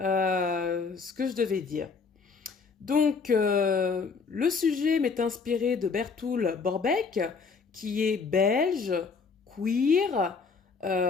que je devais dire. Donc, le sujet m'est inspiré de Bertoul Borbeck, qui est belge, queer,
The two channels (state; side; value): quieter; right; 5.0 dB